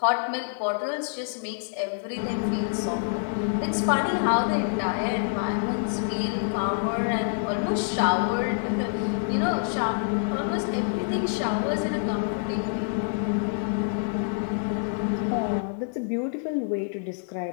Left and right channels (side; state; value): right; silent; digital silence